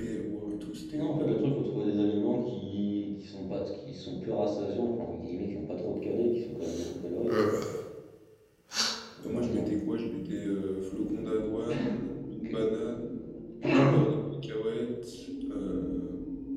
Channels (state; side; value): identical; both; correlation 1.00